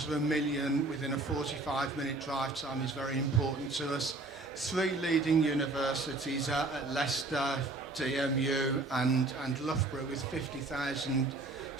of 1 million within a 45-minute drive time is very important to us. 3 leading universities at Leicester, DMU and Loughborough with 50,000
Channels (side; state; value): left; quieter; 3.1 dB